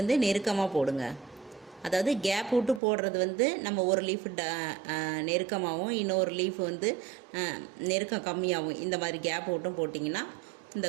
நெருக்கமாக போடுங்க. அதாவது கேப் விட்டு போடுறது வந்து நம்ம ஒரு லீஃப் நெருக்கமாகவும் இன்னொரு லீஃப் வந்து நெருக்கம் கம்மியாகவும் இந்த மாதிரி கேப் விட்டும் போட்டிங்கன்னா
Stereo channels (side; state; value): left; drops out; at 2.8 s